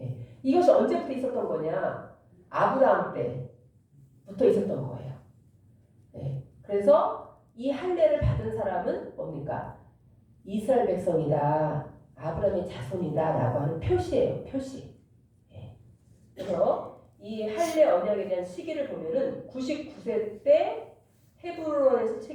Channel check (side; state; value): both; identical; correlation 1.00